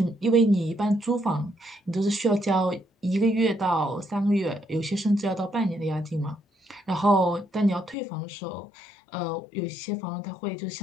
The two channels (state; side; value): drops out; right; at 8.0 s